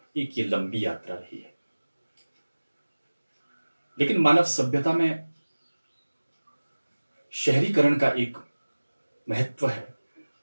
एक ये लंबी यात्रा रही है। लेकिन मानव सभ्यता में शहरीकरण का एक महत्व है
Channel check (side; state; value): both; inverted; correlation -1.00